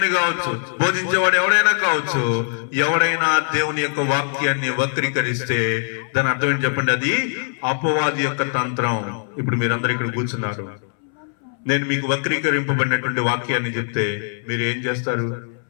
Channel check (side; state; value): right; silent; 62 dB below the other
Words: కావచ్చు, బోధించేవాడు ఎవడైనా కావచ్చు, ఎవడైనా దేవుని యొక్క వాక్యాన్ని వక్రీకరిస్తే దాని అర్థం ఏంటి చెప్పండి? అది అపవాది యొక్క తంత్రం. ఇప్పుడు మీరందరూ ఇక్కడ కూర్చున్నారు, నేను మీకు వక్రీకరింపబడినటువంటి వాక్యాన్ని చెప్తే మీరు ఏం చేస్తారు?